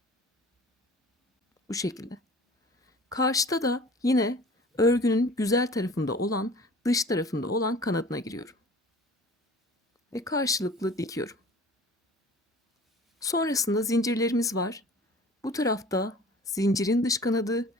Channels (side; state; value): both; normal; correlation 0.44